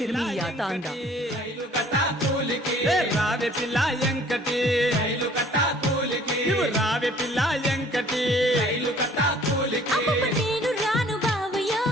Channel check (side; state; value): both; normal; correlation 0.55